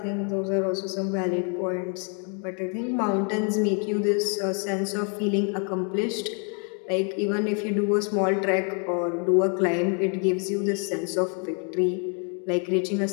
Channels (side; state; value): right; quieter; 39.9 dB